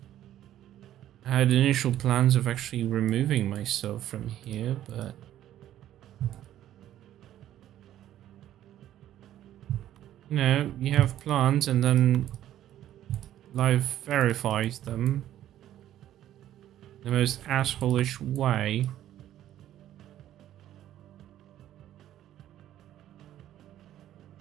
I had initial plans of actually removing myself from here, but you know, you have plans and then life verifies them in the most asshole-ish way.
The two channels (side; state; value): left; quieter; 12.3 dB